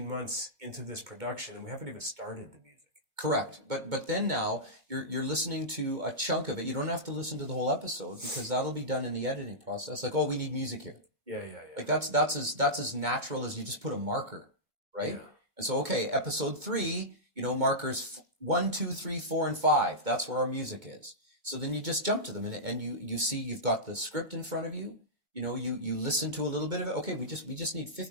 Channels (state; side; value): late; left; 2.2 ms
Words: months into this production, and we haven't even started the music. Correct. But then now you're listening to a chunk of it. You don't have to listen to the whole episode, because that'll be done in the editing process. Like, oh, we need music here. Yeah. Like that's as natural as you just put a marker, right? Yeah. And so, okay, episode 3, markers 1, 2, 3, 4, and 5. That's where our music is. So then you just jump to them, and you see you've got the script in front of you. You listen to a little bit of it. Okay, we just need